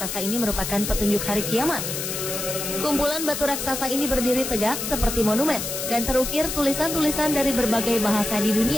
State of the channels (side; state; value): left; noise; hiss, 4 dB below the sound